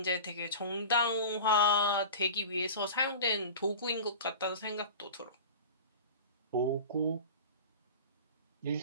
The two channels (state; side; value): inverted; both; correlation -0.34